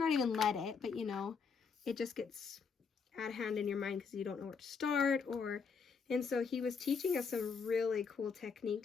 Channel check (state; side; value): quieter; right; 5.6 dB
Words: even let it, but you know, it just gets out of hand in your mind because you don't know where to start. And so he was teaching us some really cool